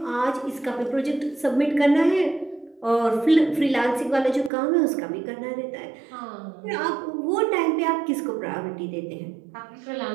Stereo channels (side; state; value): left; drops out; at 4.5 s